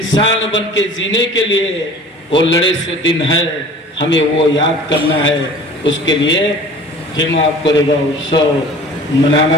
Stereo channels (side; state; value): both; normal; correlation 0.44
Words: बन के जीने के लिए वो लड़े से दिन है। हमें वो याद करना है, उसके लिए भीमा कोरेगांव उत्सव